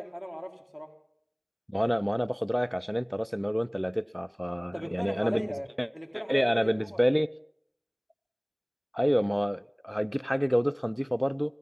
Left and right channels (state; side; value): identical; both; correlation 1.00